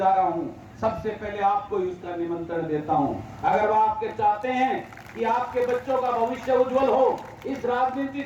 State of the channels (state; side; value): identical; both; correlation 1.00